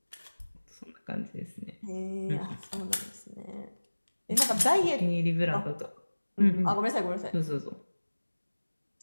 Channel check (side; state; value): both; inverted; correlation -1.00